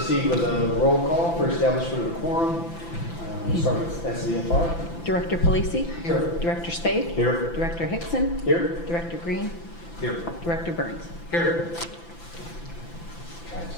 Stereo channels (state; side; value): late; right; 5.9 ms